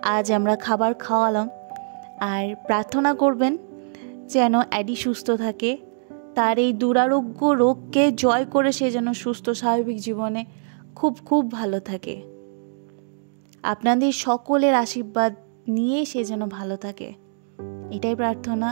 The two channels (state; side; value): silent; left; digital silence